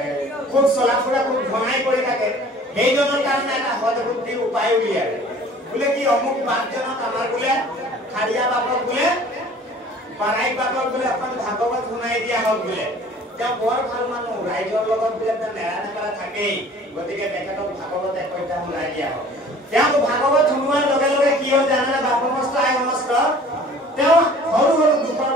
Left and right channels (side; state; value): both; normal; correlation 0.49